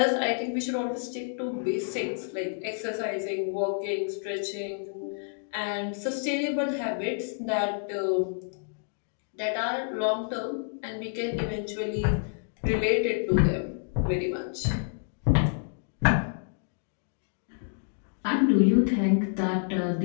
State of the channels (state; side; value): silent; right; digital silence